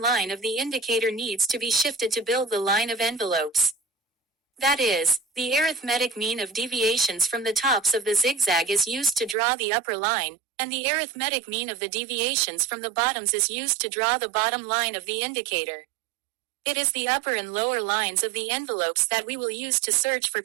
of the indicator needs to be shifted to build the line of envelopes. That is, the arithmetic mean of deviations from the tops of the zigzag is used to draw the upper line, and the arithmetic mean of the deviations from the bottoms is used to draw the bottom line of the indicator. It is the upper and lower lines of the envelopes that we will use to search for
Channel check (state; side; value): drops out; left; at 9.3 s